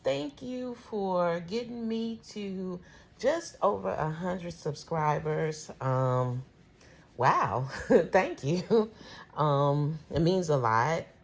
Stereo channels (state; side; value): identical; both; correlation 1.00